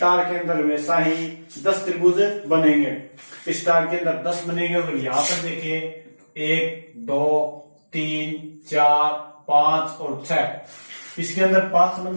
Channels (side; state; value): both; inverted; correlation -1.00